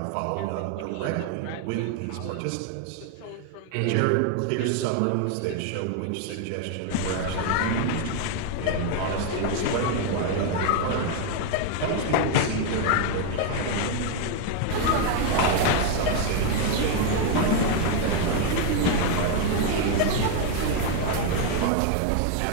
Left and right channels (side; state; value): both; different; correlation 0.01